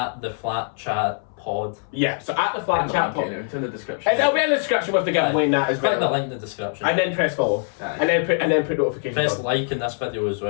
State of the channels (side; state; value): right; silent; 63 dB below the other